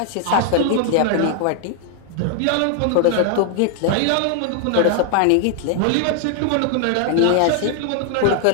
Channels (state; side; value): different; both; correlation 0.00